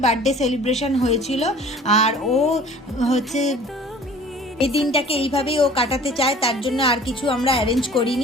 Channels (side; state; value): both; normal; correlation 0.47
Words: বার্থডে সেলিব্রেশন হয়েছিল। আর ও হচ্ছে এই দিনটাকে এইভাবেই ও কাটাতে চায়, তার জন্য আর কিছু আমরা অ্যারেঞ্জ